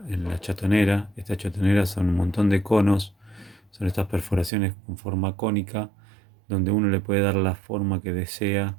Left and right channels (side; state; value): left; drops out; at 4.5 s